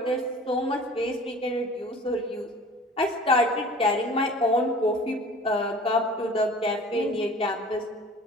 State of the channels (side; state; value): both; normal; correlation 0.44